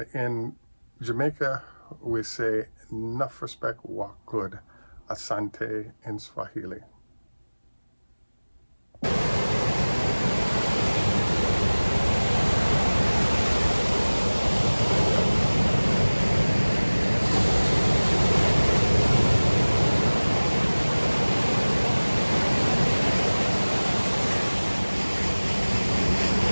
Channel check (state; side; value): inverted; both; correlation -1.00